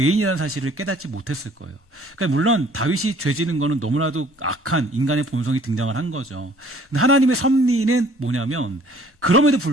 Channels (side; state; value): both; normal; correlation 0.56